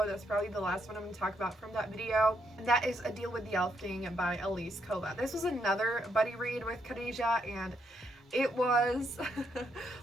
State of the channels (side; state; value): both; normal; correlation 0.76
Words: That's probably the last one I'm going to talk about from that video, and that is A Deal with the Elf King by Elise Kova. This was another buddy read with Khadijah, and it was